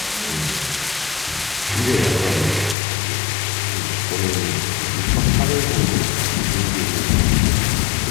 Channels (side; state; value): right; drops out; at 2.8 s